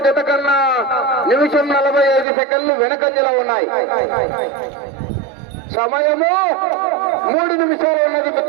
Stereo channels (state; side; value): drops out; left; at 2.2 s